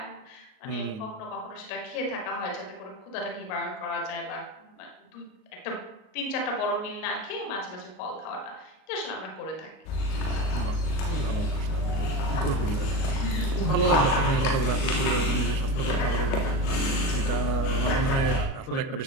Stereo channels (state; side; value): late; right; 38 ms